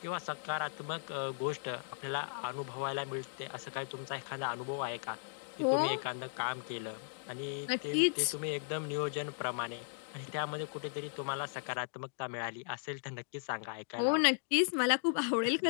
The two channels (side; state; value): right; silent; digital silence